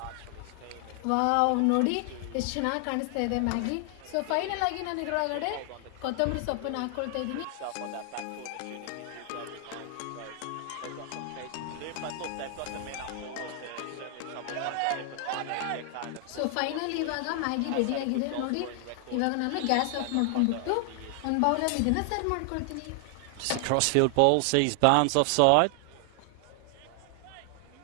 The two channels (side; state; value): both; different; correlation 0.00